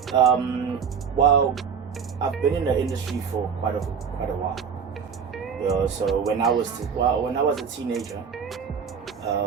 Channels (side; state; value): left; quieter; 6.6 dB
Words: while I've been in the industry for quite a while. So when I was a teenager,